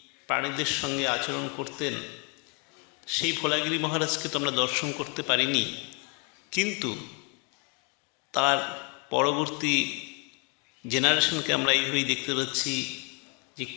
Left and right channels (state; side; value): quieter; right; 33.1 dB